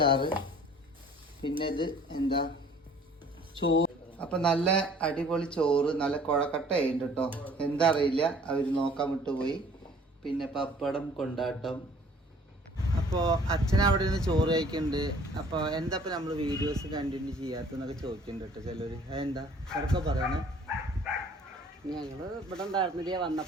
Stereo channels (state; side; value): normal; both; correlation 0.53